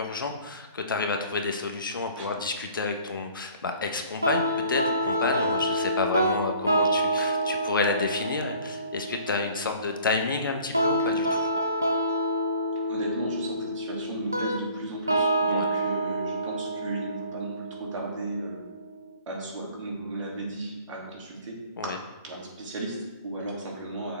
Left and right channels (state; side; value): inverted; both; correlation -0.52